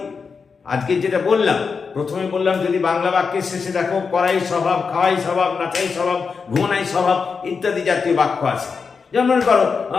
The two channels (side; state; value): right; quieter; 5.3 dB